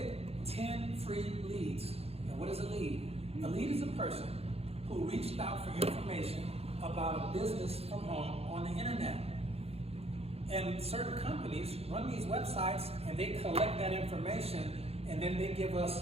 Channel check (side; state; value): left; late; 0.29 ms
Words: 10 free leads. Now, what is a lead? A lead is a person who reached out for information about a business from home on the internet. And certain companies run these websites and they collect that information and then they give